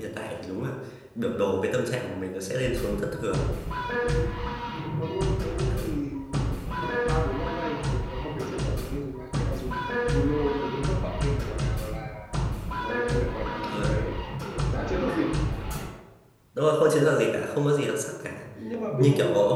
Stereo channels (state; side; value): identical; both; correlation 1.00